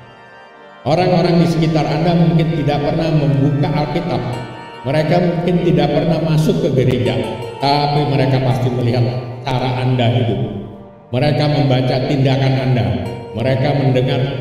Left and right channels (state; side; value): identical; both; correlation 1.00